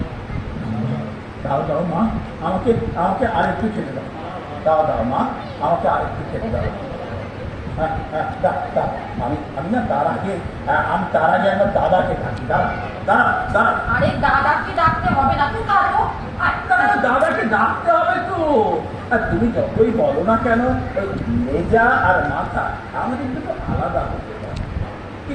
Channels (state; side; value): identical; both; correlation 1.00